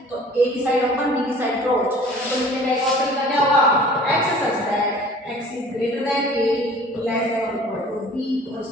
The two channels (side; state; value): both; normal; correlation 0.48